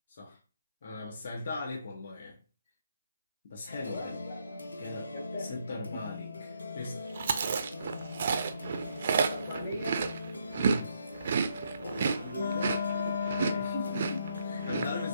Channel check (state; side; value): inverted; both; correlation -0.75